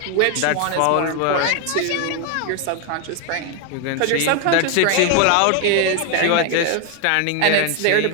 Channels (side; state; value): both; different; correlation 0.01